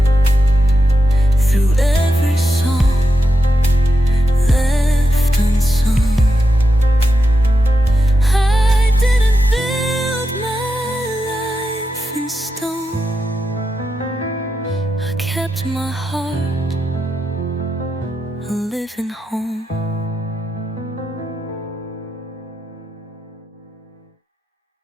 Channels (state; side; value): normal; both; correlation 0.87